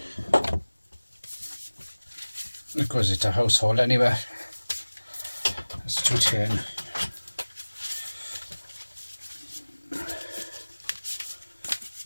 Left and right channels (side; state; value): both; inverted; correlation -1.00